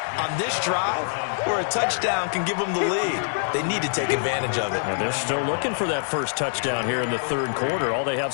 on this drive where a touchdown can give them the lead. They need to take advantage of it. And they're still looking for that first touchdown here in the third quarter. All they have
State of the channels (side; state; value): right; silent; digital silence